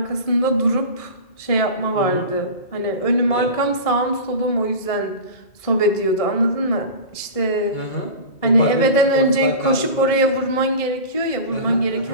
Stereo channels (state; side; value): late; right; 1.7 ms